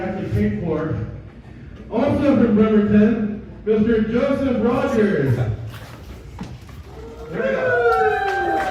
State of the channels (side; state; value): both; identical; correlation 1.00